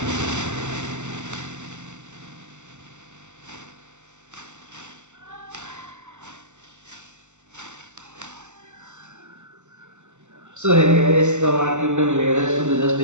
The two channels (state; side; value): late; left; 0.84 ms